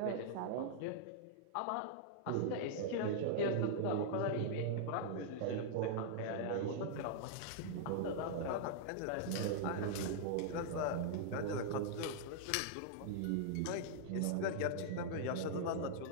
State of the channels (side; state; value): both; different; correlation -0.01